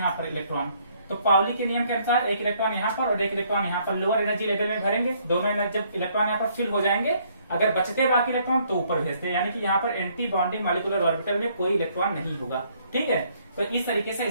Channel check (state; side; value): inverted; both; correlation -0.66